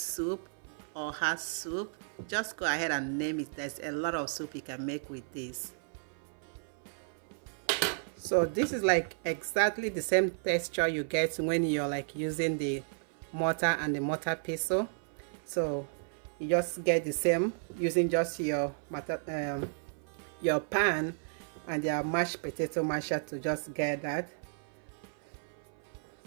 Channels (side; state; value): left; silent; 56 dB below the other